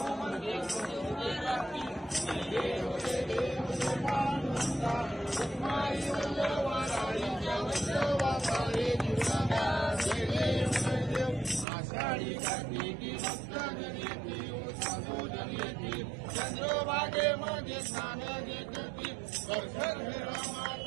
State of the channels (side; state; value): left; drops out; at 11.7 s